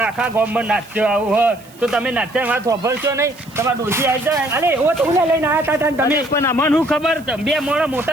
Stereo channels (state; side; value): noise; right; hiss, 25 dB below the sound